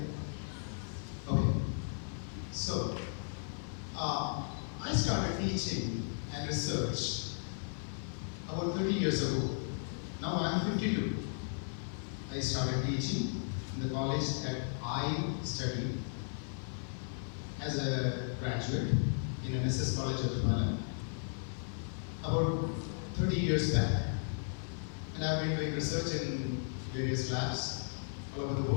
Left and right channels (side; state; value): right; silent; digital silence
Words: Okay. So, I started teaching and research about 30 years ago. Now I'm 52. I started teaching in the college that I studied as a graduate in NSS College of Tamala about 30 years back. And I've been doing research in various labs all over the